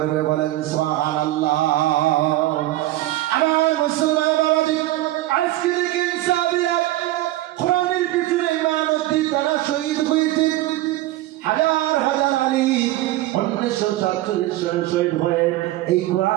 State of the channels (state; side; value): quieter; left; 16.2 dB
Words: বলেন সুবহানাল্লাহ। আমার মুসলমান বাবাজি, আজকে দেখেন সাহাবীরা কোরআনের পিছনে মানবী তারা শহীদ হয়েছে। হাজার হাজার আলিম 1947 সালে শহীদ হয়ে এই